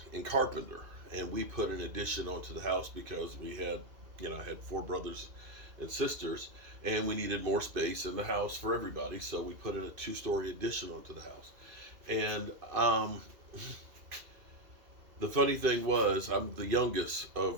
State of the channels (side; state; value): left; late; 2.5 ms